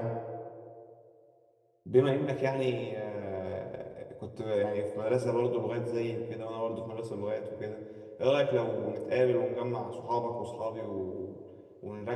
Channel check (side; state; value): both; identical; correlation 1.00